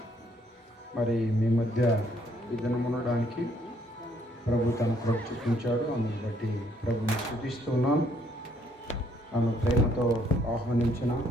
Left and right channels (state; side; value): normal; both; correlation 0.68